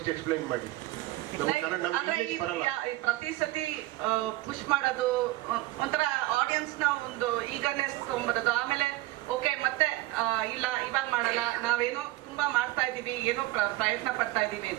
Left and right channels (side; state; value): left; quieter; 18.5 dB